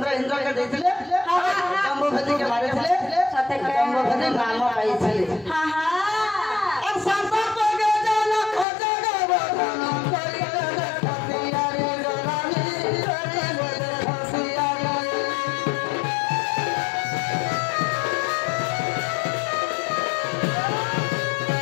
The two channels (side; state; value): right; drops out; at 8.7 s